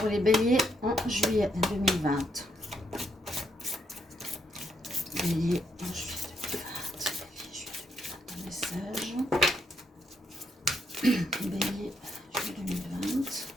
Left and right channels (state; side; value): normal; both; correlation 0.76